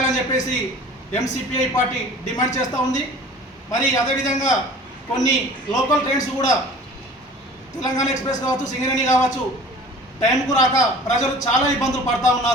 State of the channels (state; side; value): normal; both; correlation 0.45